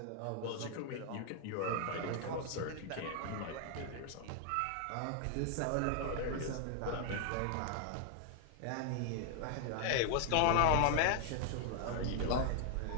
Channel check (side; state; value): both; different; correlation 0.00